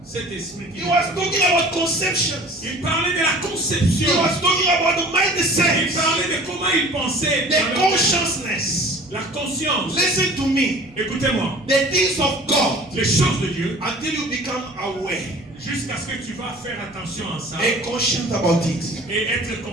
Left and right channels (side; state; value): right; noise; hum, 28 dB below the sound